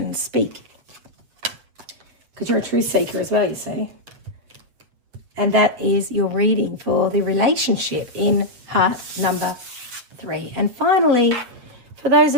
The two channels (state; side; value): late; left; 8.2 ms